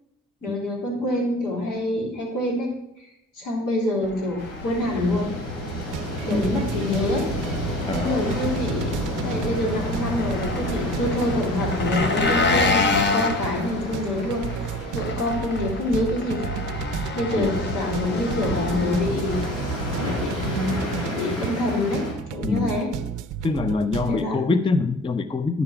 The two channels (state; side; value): normal; both; correlation 0.43